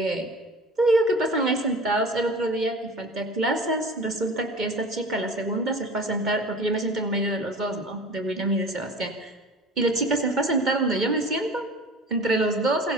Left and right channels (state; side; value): normal; both; correlation 0.39